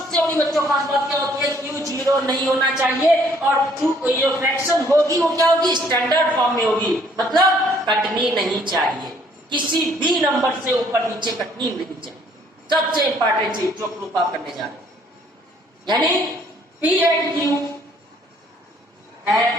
बड़ी बच्चों खास बात क्या होती है, Q 0 नहीं होना चाहिए, और जो फ्रैक्शन होगी वो क्या होगी, स्टैंडर्ड फॉर्म में होगी, मतलब कटनी नहीं चाहिए, किसी भी नंबर से ऊपर नीचे कटनी नहीं चाहिए। सबसे इंपॉर्टेंट चीज जो प्रूफ आप करने जा रहे हैं, यानी P and Q have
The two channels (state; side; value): normal; both; correlation 0.62